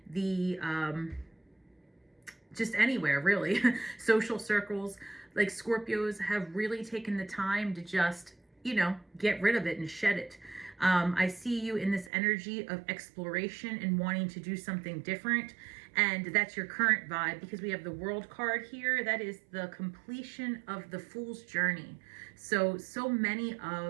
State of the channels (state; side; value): drops out; left; at 12.1 s